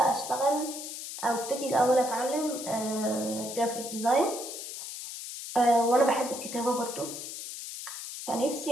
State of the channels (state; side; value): noise; left; hiss, 8 dB below the sound